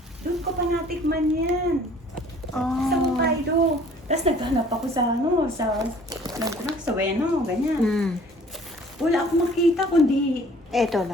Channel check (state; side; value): normal; both; correlation 0.54